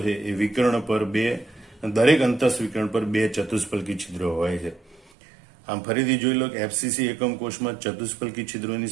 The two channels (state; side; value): drops out; left; at 5.1 s